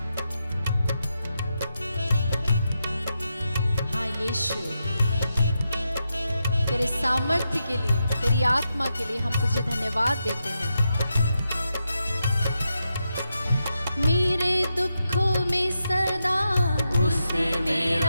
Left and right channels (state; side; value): inverted; both; correlation -0.86